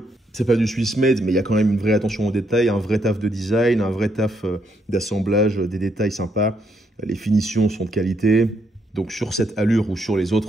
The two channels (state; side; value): normal; both; correlation 0.75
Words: C'est pas du Swiss made, mais il y a quand même une vraie attention aux détails, un vrai taf de design, un vrai taf d'assemblage, des détails sympas. Les finitions sont de qualité. Donc sur cette allure ou sur les